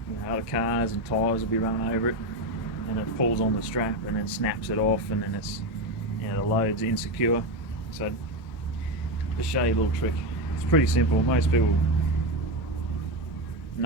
other cars and tyres will be running over it, and it pulls on the strap and then snaps it off, and then it's, you know, the load's insecure. So just show you a little trick. It's pretty simple. Most people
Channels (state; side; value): normal; both; correlation 0.13